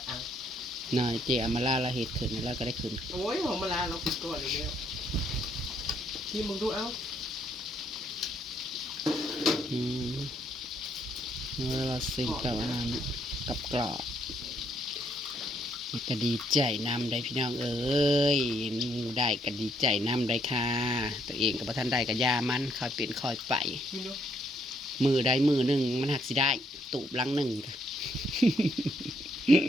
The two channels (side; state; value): both; normal; correlation 0.71